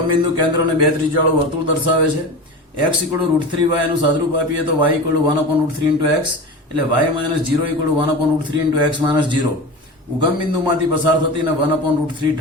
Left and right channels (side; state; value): both; normal; correlation 0.29